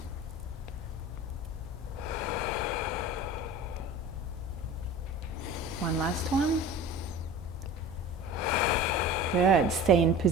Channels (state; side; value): normal; both; correlation 0.37